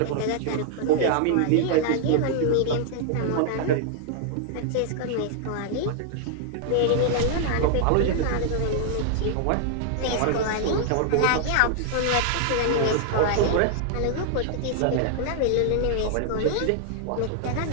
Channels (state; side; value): different; both; correlation -0.01